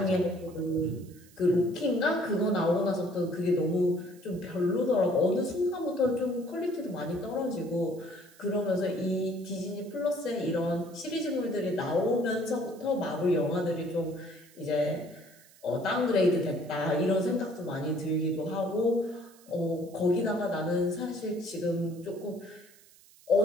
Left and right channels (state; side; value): noise; right; hiss, 26 dB below the sound